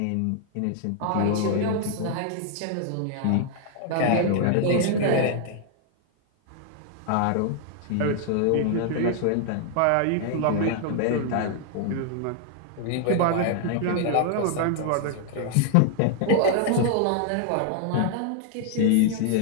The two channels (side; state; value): both; different; correlation 0.00